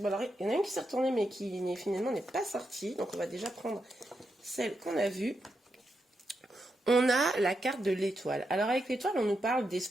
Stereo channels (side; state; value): both; normal; correlation 0.84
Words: alors il y en a une qui s'est retournée mais qui finalement n'est pas sortie. Donc on va déjà prendre celle qu'on a vue. On a la carte de l'étoile. Alors avec l'étoile, on nous parle